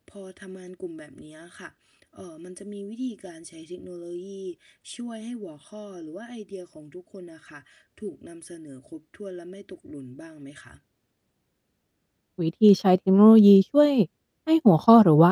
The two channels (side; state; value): both; identical; correlation 1.00